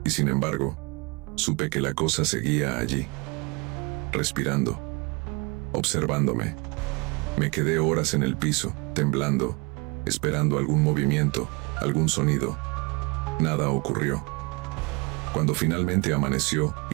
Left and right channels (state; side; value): quieter; left; 28.6 dB